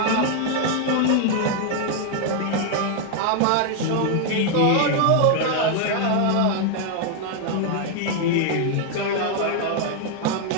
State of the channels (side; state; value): both; different; correlation 0.00